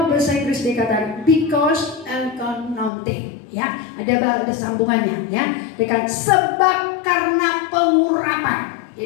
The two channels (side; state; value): right; drops out; at 2.9 s